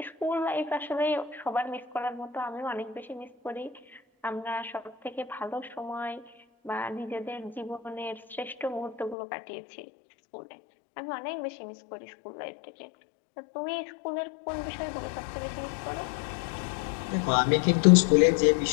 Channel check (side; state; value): right; drops out; at 9.2 s